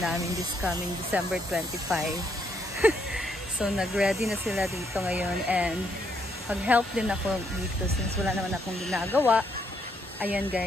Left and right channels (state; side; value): normal; both; correlation 0.74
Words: this coming December 25. So nag-ready na sila dito ngayon. And mag-help din ako dito since wala naman akong ginagawa. Ayan